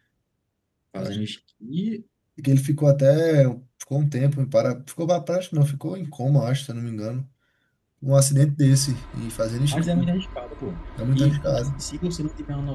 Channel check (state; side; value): identical; both; correlation 1.00